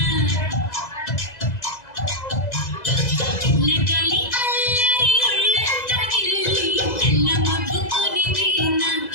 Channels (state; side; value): late; right; 2.0 ms